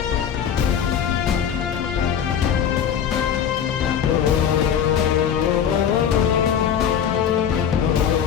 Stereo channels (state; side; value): quieter; right; 8.4 dB